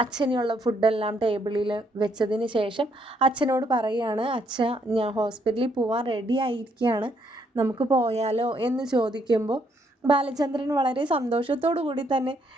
അച്ഛനുള്ള ഫുഡെല്ലാം ടേബിളിൽ വെച്ചതിന് ശേഷം അച്ഛനോട് പറയുകയാണ്, അച്ഛ ഞാൻ ഹോസ്പിറ്റലിൽ പോവാൻ റെഡി ആയിരിക്കുകയാണ്, നമുക്ക് പോയാലോ എന്ന് ചോദിക്കുമ്പോൾ ബാലചന്ദ്രൻ വളരെ സന്തോഷത്തോടു കൂടി തന്നെ,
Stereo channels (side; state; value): both; normal; correlation 0.71